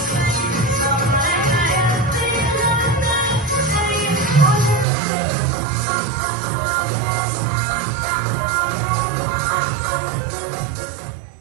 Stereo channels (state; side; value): drops out; left; at 4.9 s